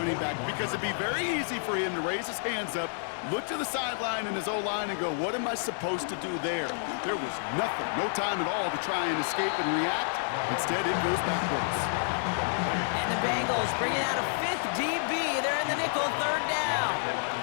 back because it'd be very easy for him to raise his hands up, look to the sideline and his O-line and go, what am I supposed to do there? There was nothing, no time at all to try and escape and react. Instead, it goes backwards. Eagles bringing out a fifth DB. They're in the nickel, third down.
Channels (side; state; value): right; silent; digital silence